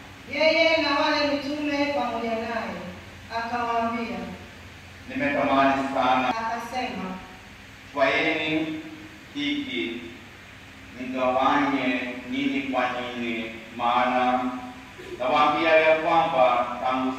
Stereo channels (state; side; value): identical; both; correlation 1.00